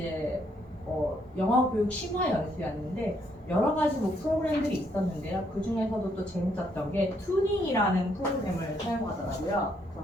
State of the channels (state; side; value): normal; both; correlation 0.72